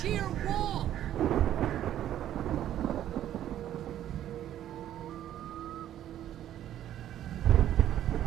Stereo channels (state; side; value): quieter; left; 11.6 dB